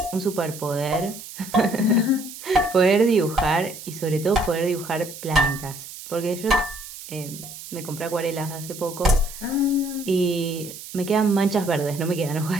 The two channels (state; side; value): noise; right; hiss, 13 dB below the sound